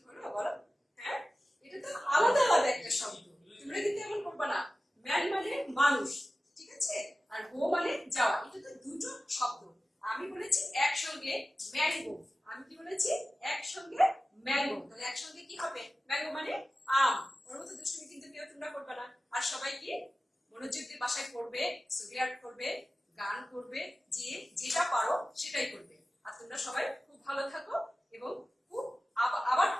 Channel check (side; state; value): both; normal; correlation 0.95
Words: হলো বলো? হ্যাঁ, এটা তো আলাদা আলাদা একটা শব্দ, তোমরা কিন্তু এমন করবে না। ম্যান মানে মানুষ, ঠিক আছে, আর গো মানে যাওয়া, এটা তো দুটো শব্দ। আমি বলেছি একসঙ্গে ম্যাঙ্গো, আমি কি বলেছি একসঙ্গে ম্যাঙ্গো, তাহলে একসঙ্গে কি হবে? ম্যাঙ্গো মানে আম। ওর মতো দুষ্টুমি কিন্তু কেউ তোমরা করবে না। আর সবাই কি মনোযোগ দিয়ে বাসায় পড়বে, ছবি আর্ট করবে, গান করবে, যে যেটা পারো সেটাই করবে। আর তোমরা সবাই খুব ভালো থাকো এবং খুব আবার